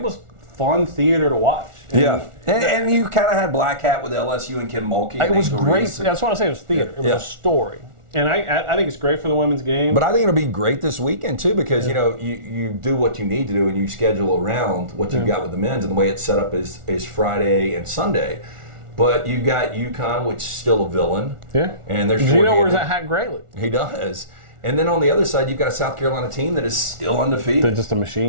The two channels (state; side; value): late; left; 1.4 ms